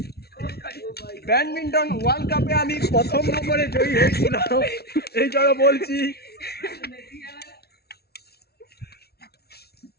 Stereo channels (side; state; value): right; late; 0.46 ms